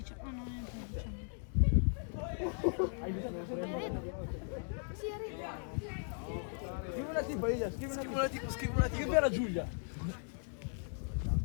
Ah no, è il 19. Scrivi una tipo, Elia, scrivi una tipo. Scrivi alla Giulia.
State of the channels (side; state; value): right; silent; 53 dB below the other